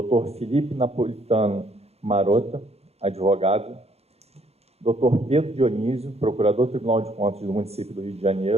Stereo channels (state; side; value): late; left; 0.30 ms